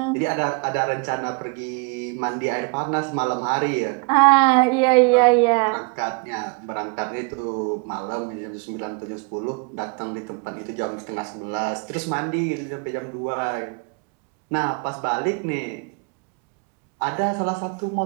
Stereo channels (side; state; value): left; quieter; 31.4 dB